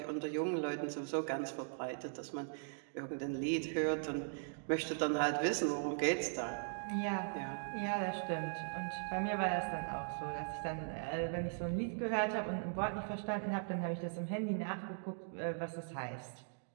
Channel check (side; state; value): left; silent; digital silence